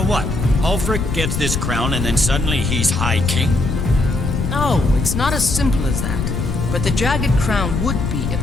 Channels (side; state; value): left; noise; rumble, 2 dB below the sound